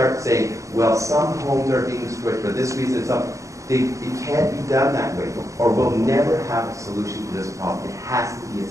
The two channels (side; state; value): left; late; 0.15 ms